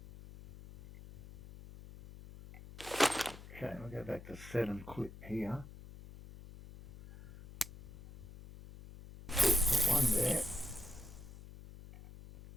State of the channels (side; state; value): left; noise; hum, 16 dB below the sound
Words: Okay, we'll go back to 7 clip here. Put one there.